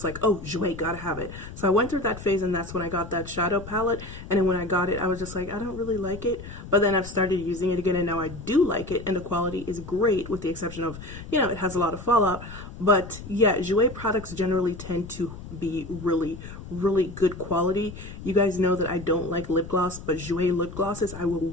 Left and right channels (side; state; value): left; noise; rumble, 13 dB below the sound